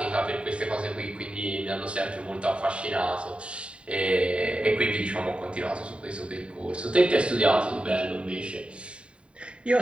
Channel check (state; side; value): late; left; 0.057 ms